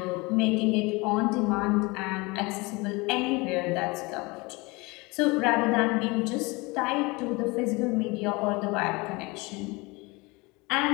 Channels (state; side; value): quieter; right; 25.2 dB